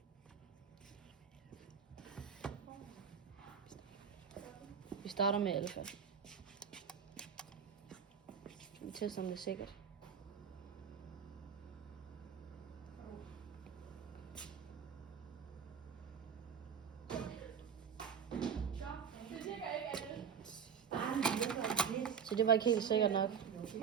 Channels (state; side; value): quieter; left; 7.2 dB